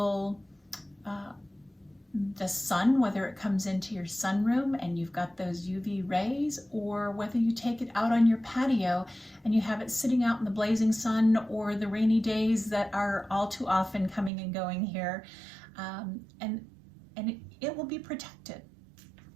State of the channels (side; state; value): left; drops out; at 14.3 s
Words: the sun, whether it comes into your sunroom and you've got those UV rays, or whether you take it out on your patio and you have it sitting out in the blazing sun or the rainy days that are all too often coming and going here, and it will be protected.